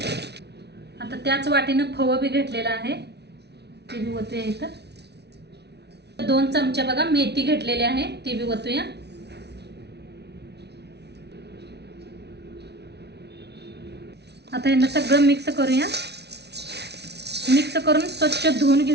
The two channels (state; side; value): late; left; 0.49 ms